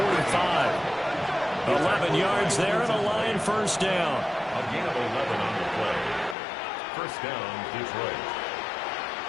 11 yards there and a line first down. A gain of 11 on the play. First down, Detroit.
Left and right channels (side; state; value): right; drops out; at 6.4 s